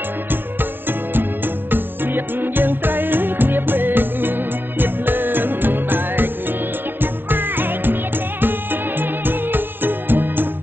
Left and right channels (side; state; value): left; late; 0.095 ms